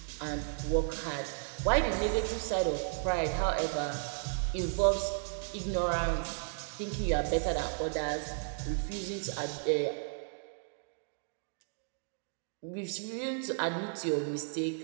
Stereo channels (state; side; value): silent; left; digital silence